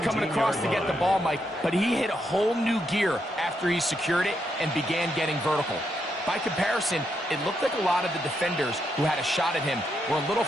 across to get the ball, Mike, but he hit a whole new gear after he secured it and began getting vertical. By comparison, it looked like a lot of the defenders who had a shot at him were a little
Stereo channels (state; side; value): normal; both; correlation 0.80